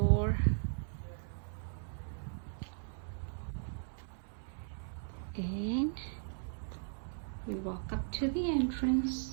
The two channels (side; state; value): left; silent; 53 dB below the other